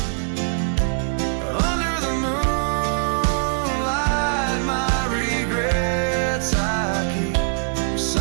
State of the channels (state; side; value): silent; left; 61 dB below the other